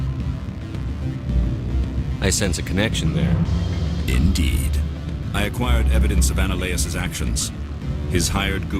I sense a connection there. Indeed. I acquired evidence of Analaeus' actions. His hired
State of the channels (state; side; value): identical; both; correlation 1.00